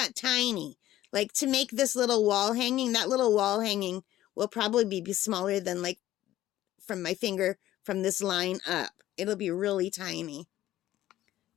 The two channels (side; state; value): right; quieter; 14.2 dB